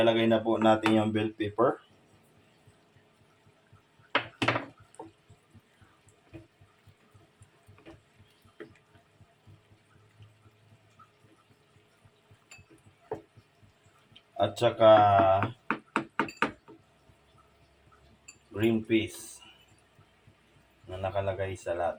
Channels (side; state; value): both; identical; correlation 1.00